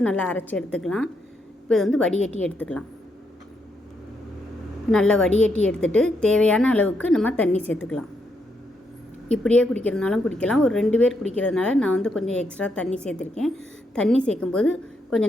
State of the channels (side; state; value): both; normal; correlation 0.78